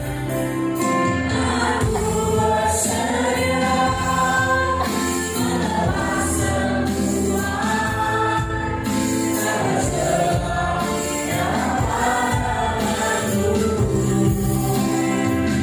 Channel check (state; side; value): identical; both; correlation 1.00